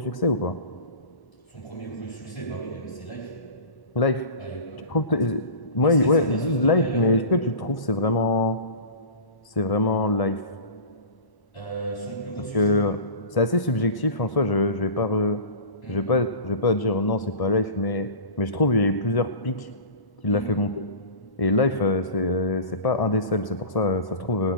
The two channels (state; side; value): late; right; 1.1 ms